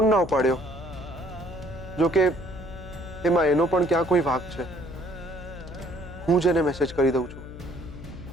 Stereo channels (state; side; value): noise; left; hum, 13 dB below the sound